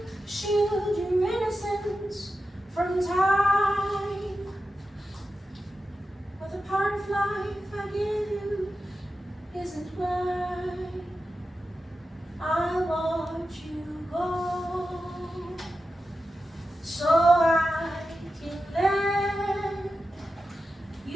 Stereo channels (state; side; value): normal; both; correlation 0.91